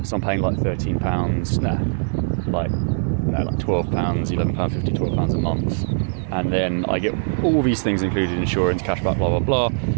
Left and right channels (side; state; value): left; silent; 57 dB below the other